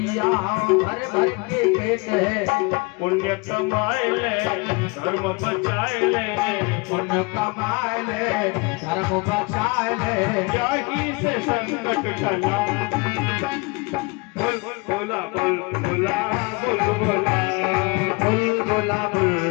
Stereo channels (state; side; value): quieter; right; 27.4 dB